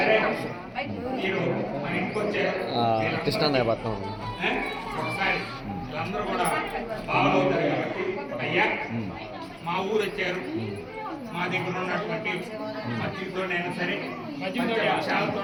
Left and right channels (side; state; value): both; identical; correlation 1.00